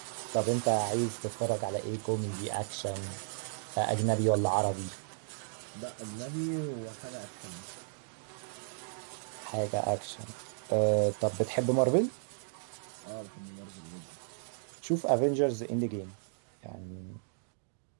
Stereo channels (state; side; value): silent; left; digital silence